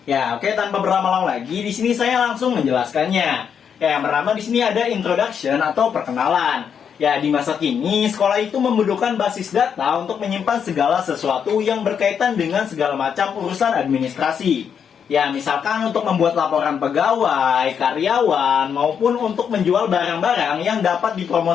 Ya, oke, tanpa berlama-lama lagi, di sini saya langsung menjelaskannya. Ya, yang pertama di sini ada introduction atau perkenalan. Ya, di masa kini, sekolah itu membutuhkan basis data untuk menyimpan segala sesuatu yang berkaitan dengan segala macam urusan administrasi. Ya, misalkan untuk membuat laporan pegawai, karyawan, maupun untuk menjual barang-barang yang dapat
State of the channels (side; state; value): right; quieter; 7.5 dB